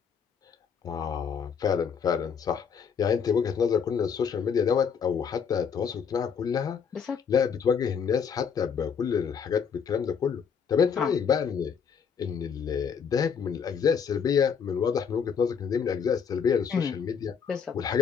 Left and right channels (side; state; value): right; quieter; 6.7 dB